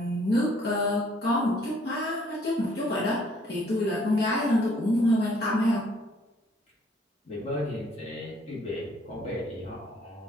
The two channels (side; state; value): both; normal; correlation 0.62